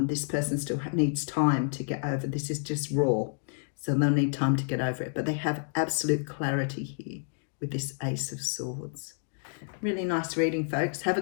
This person still needs time to get over. This is just raw. So they'll need time to get over it. But they have absolute clarity here with this Ace of Swords. Really nice reading, folks. Have a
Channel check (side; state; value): right; silent; 58 dB below the other